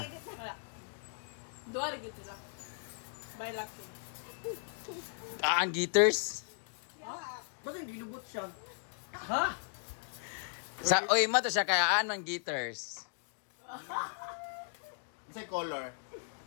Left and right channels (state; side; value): silent; right; digital silence